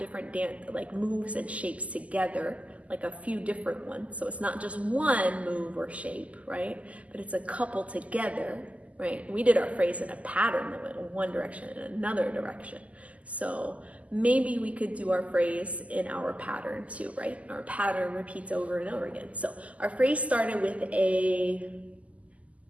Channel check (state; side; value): late; left; 0.069 ms